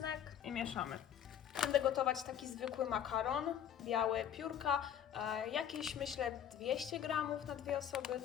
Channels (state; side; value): quieter; right; 9.6 dB